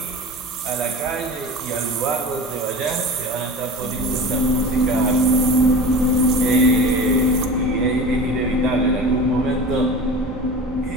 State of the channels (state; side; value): normal; both; correlation 0.34